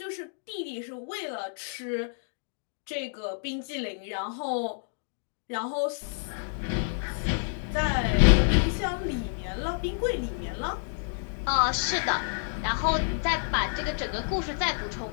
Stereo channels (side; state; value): right; silent; digital silence